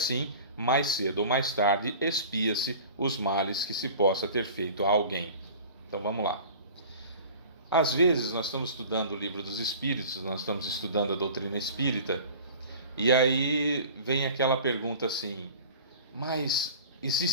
mais cedo ou mais tarde, expia-se os males que se possa ter feito a alguém. Então vamos lá. Às vezes nós estamos estudando o Livro dos Espíritos, nós estamos estudando a doutrina espírita, e aí vem aquela pergunta assim: mas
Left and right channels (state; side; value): inverted; both; correlation -0.41